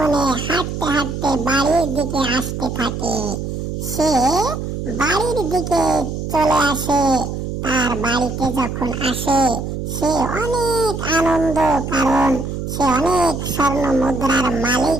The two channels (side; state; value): right; noise; hum, 5 dB below the sound